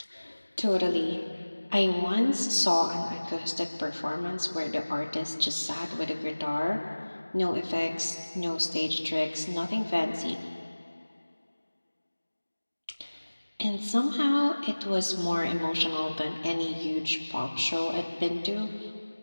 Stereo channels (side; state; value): both; inverted; correlation -1.00